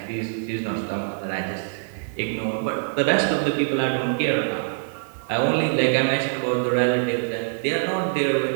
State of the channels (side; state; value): left; silent; digital silence